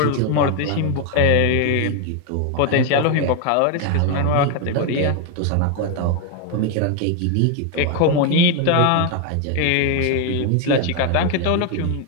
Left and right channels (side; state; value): both; different; correlation 0.01